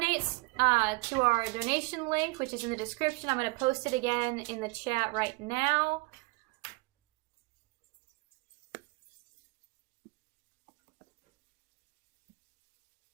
to our donation link, which is in the description. I'm going to post it again in the chat right now.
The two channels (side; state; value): left; quieter; 26.1 dB